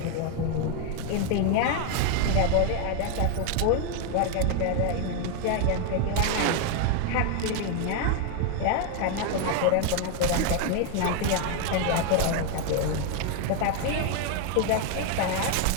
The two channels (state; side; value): different; both; correlation 0.01